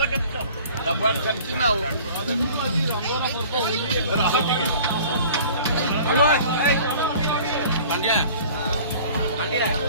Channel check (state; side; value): inverted; both; correlation -0.46